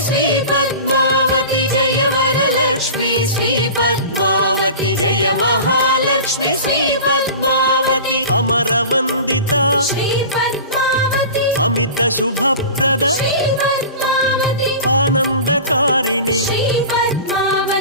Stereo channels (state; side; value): inverted; both; correlation -0.35